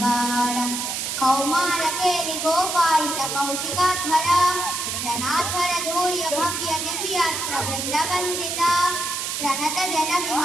कौमार केलि गोपायित कौशिकाध्वर रणाध्वर धूर्य भव्य दिव्यास्त्र वृंदवंदित प्रणत जन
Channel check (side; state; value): right; noise; hiss, 2 dB below the sound